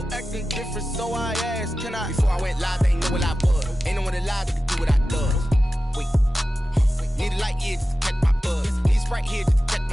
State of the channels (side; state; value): both; normal; correlation 0.94